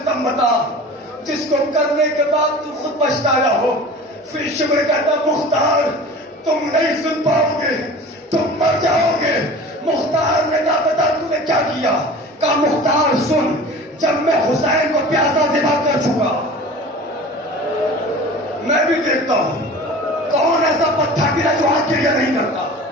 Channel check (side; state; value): both; normal; correlation 0.39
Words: بتا جس کو کرنے کے بعد تو خود پچھتایا ہو. پھر شمر کہتا مختار تم نہیں سن پاؤ گے، تم مر جاؤ گے. مختار نے کہا بتا تو نے کیا کیا. کہا مختار سن، جب میں حسین کو پیاسا ذبح کر چکا، میں بھی دیکھتا ہوں کون ایسا پتھر دل ہے جو آج کریا نہیں کرتا.